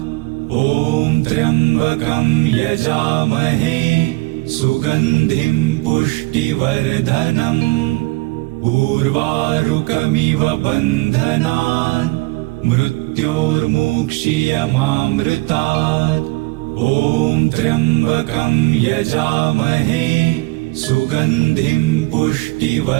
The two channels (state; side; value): quieter; left; 22.9 dB